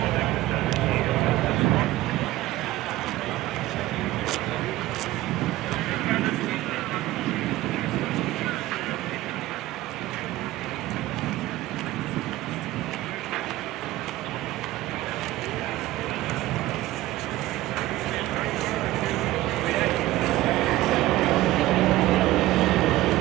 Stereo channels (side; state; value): left; quieter; 16.6 dB